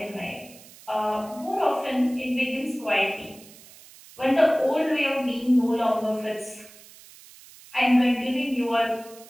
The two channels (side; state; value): right; noise; hiss, 21 dB below the sound